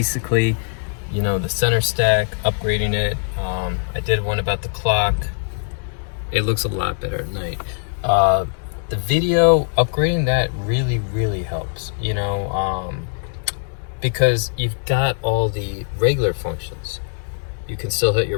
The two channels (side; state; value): right; silent; 65 dB below the other